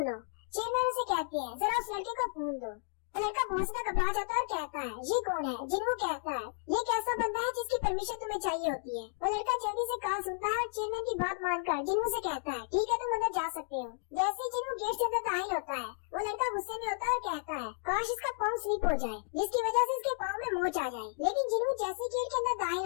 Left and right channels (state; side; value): silent; right; digital silence